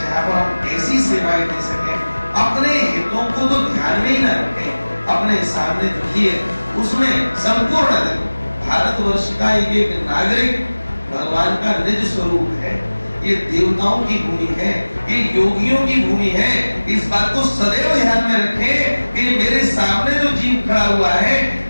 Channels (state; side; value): inverted; both; correlation -1.00